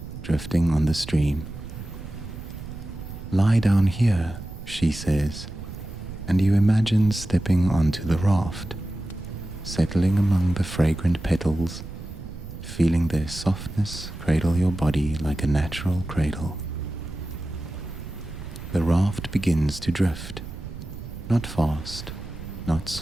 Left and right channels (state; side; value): noise; right; rumble, 11 dB below the sound